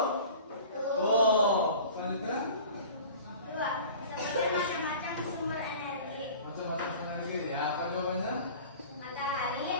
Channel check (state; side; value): inverted; both; correlation -0.42